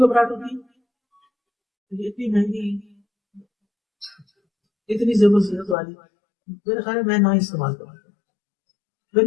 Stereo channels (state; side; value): drops out; right; at 5.8 s